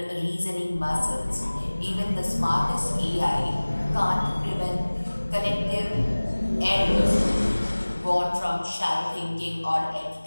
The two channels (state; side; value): inverted; both; correlation -1.00